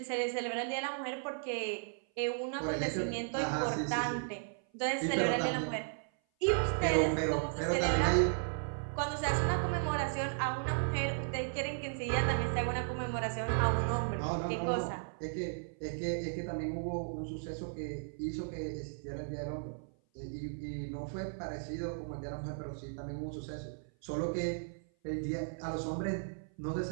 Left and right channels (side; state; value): left; silent; 54 dB below the other